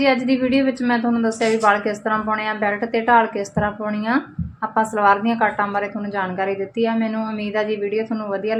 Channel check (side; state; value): both; identical; correlation 1.00